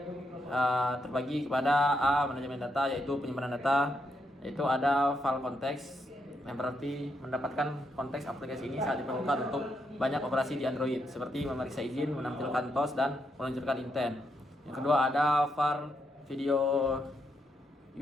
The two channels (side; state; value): both; normal; correlation 0.80